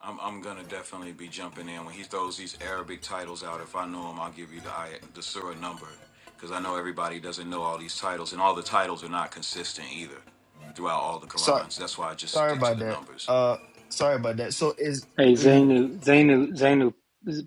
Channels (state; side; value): identical; both; correlation 1.00